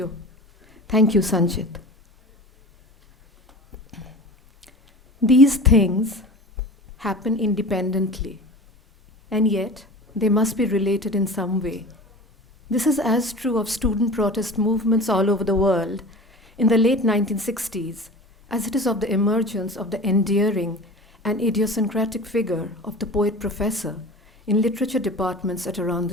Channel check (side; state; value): both; normal; correlation 0.37